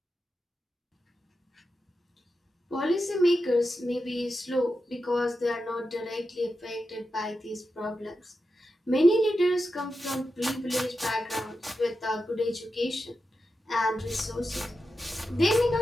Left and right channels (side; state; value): both; normal; correlation 0.90